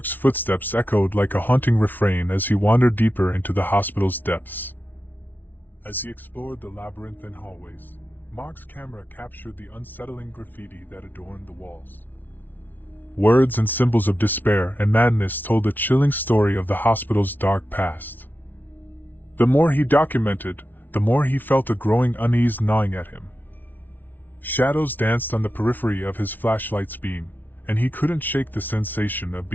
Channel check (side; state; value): right; late; 0.087 ms